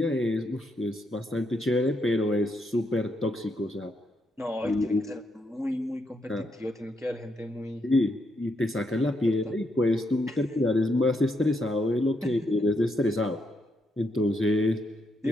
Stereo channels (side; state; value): both; normal; correlation 0.78